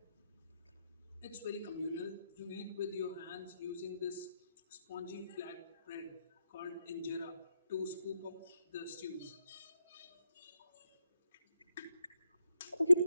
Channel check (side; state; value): both; inverted; correlation -0.81